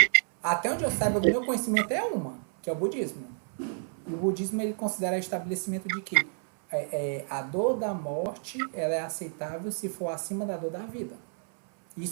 Até onde eu saiba, do meu conhecimento é uma, que é o budismo. E o budismo ele considera o estabelecimento de que a dor da morte ela é aceitável se for acima da dor da vida.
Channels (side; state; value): left; silent; 58 dB below the other